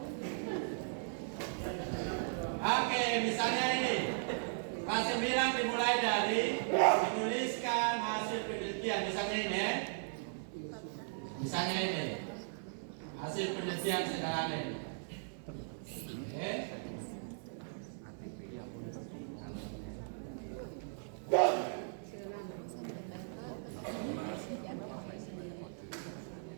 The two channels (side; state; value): left; silent; 53 dB below the other